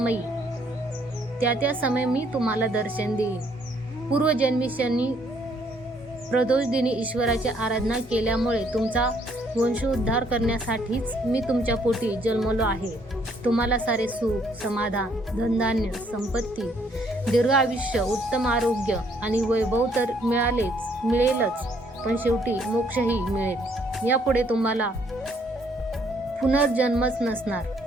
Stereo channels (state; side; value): normal; both; correlation 0.67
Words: समय मी तुम्हाला दर्शन देईन. पूर्वजन्मी शनी प्रदोषदिनी ईश्वराची आराधना केल्यामुळे तुमचा वंशोद्धार करण्यासाठीच मी तुमच्या पोटी जन्मलो आहे. तुम्हाला सारे सुख, समाधान, धनधान्य, संपत्ती, दीर्घ आयुष्य, उत्तम आरोग्य आणि वैभव तर मिळेलच, पण शेवटी मोक्षही मिळेल. यापुढे तुम्हाला पुनर्जन्मच नसणार.